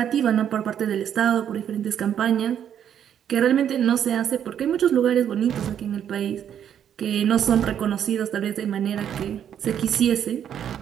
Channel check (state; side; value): quieter; left; 9.3 dB